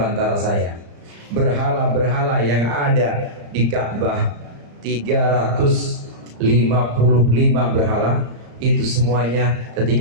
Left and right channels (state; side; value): late; left; 35 ms